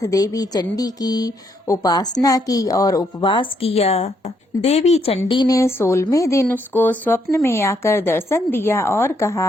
देवी चंडी की उपासना की और उपवास किया। देवी चंडी ने 16वें दिन उसको स्वप्न में आकर दर्शन दिया और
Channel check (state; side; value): normal; both; correlation 0.74